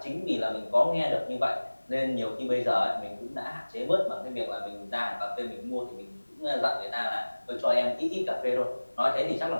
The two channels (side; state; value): both; inverted; correlation -1.00